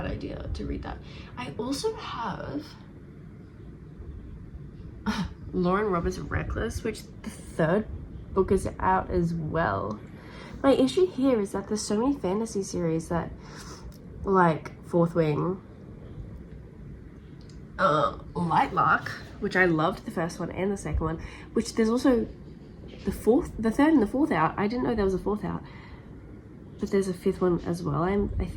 idea to read that. I also have Lauren Roberts' Reckless, which the 3rd book is out as well. My issue here is that there's so many fantasy series that, like Fourth Wing, Lightlark, which I loved the 1st one and the 2nd one, which there's also the 3rd and the 4th out. I didn't know there was a 4th out, but there's a 5th one as well, I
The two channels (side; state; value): both; identical; correlation 1.00